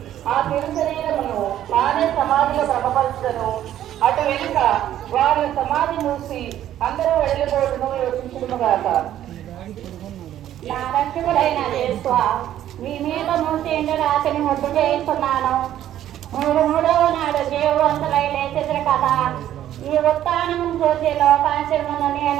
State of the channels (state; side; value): quieter; left; 11.9 dB